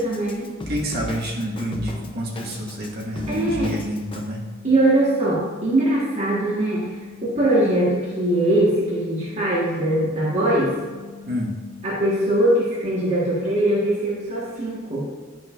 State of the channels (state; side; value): normal; both; correlation 0.51